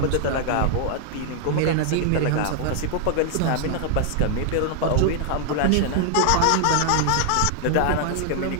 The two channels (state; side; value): different; both; correlation 0.00